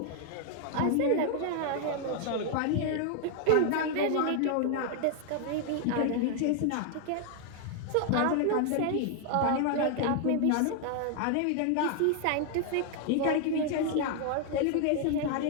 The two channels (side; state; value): both; different; correlation 0.00